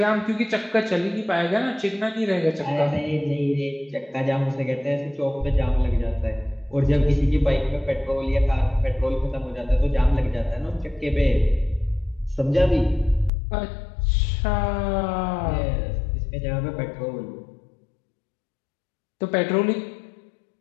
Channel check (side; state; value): right; drops out; at 13.3 s